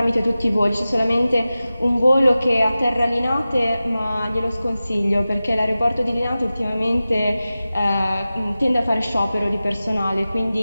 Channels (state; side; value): inverted; both; correlation -0.95